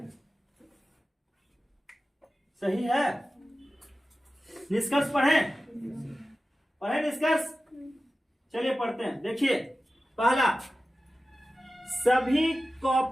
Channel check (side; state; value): both; normal; correlation 0.95